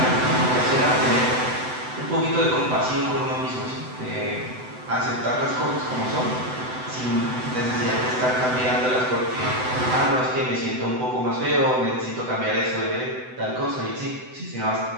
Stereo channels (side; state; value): left; late; 7.9 ms